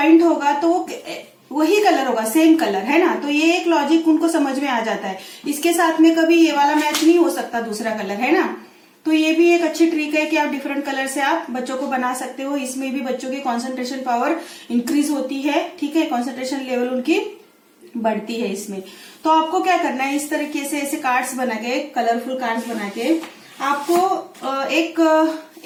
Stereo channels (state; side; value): identical; both; correlation 1.00